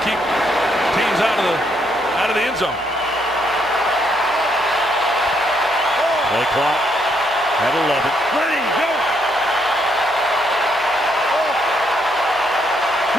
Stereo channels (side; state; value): both; normal; correlation 0.74